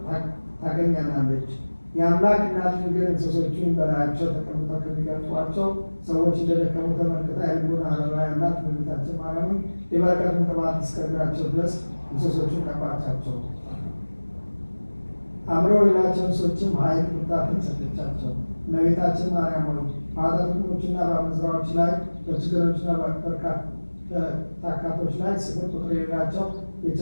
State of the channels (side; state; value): both; inverted; correlation -1.00